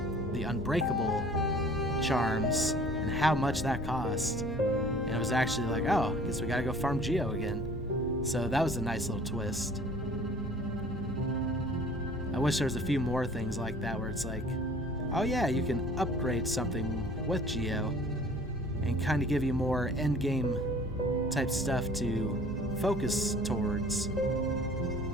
the unbreakable charms and how much that cost. And it was actually like, oh, I guess we gotta go farm Geo again. So that was a nice little twist. I wish there was a few more things like that where it's like, oh yeah, you can upgrade something with Geo and kind of give you more endgame type stuff to focus towards,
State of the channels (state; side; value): noise; left; hum, 18 dB below the sound